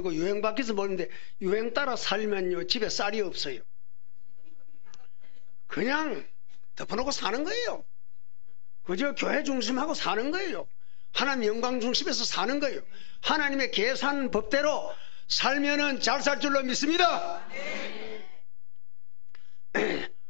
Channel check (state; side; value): silent; right; digital silence